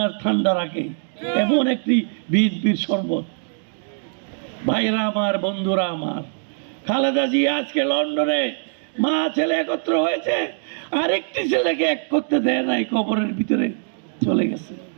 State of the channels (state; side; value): silent; left; 64 dB below the other